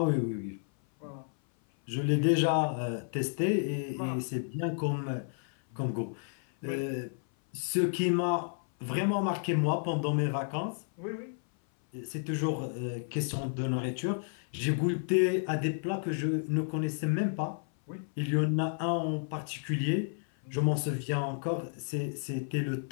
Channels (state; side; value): silent; right; 56 dB below the other